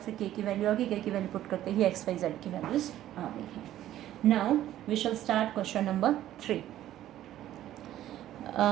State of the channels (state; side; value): quieter; left; 12.9 dB